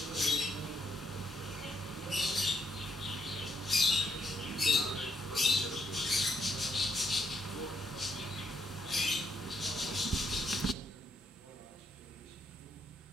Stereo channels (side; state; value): both; normal; correlation 0.74